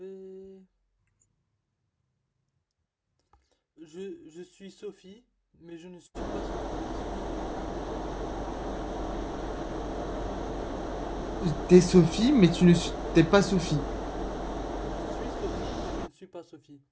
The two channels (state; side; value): identical; both; correlation 1.00